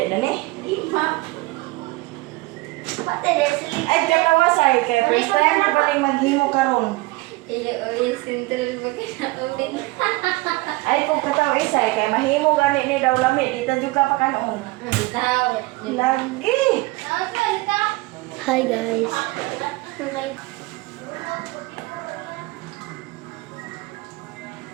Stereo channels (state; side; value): quieter; left; 22.2 dB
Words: na ni? Pati Leslie. Ay, katawasay. Kaya first time na paling maghimo karon. Iyo, sentral ba ka na ulit? Ay, kung kataw isay, kaya mahimo gani ni daw lami. Dito juga pa kanon. Tao. Lagi. Hi guys. Okay.